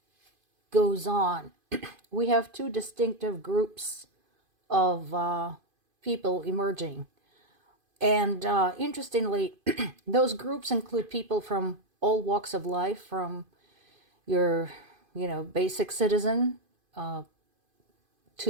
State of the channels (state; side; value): late; left; 2.5 ms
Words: goes on, we have two distinctive groups of people emerging. And interestingly, those groups include people from all walks of life, from your, basic citizen